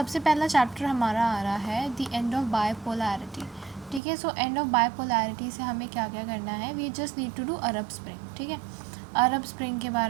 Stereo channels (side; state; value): left; drops out; at 4.0 s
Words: पहला चैप्टर हमारा आ रहा है द एंड ऑफ बायपोलैरिटी, ठीक है। सो एंड ऑफ बायपोलैरिटी से हमें क्या क्या करना है, we just need to do Arab Spring, ठीक है। अरब स्प्रिंग के